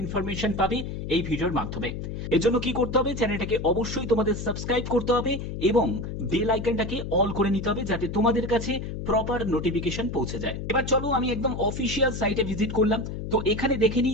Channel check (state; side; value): noise; left; hum, 6 dB below the sound